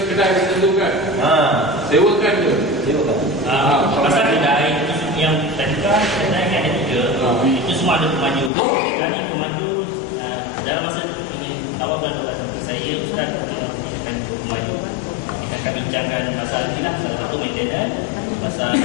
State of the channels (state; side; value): drops out; right; at 8.5 s